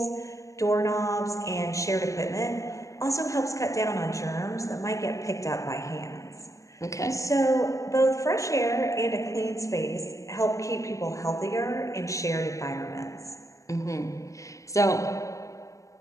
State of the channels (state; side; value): late; right; 0.15 ms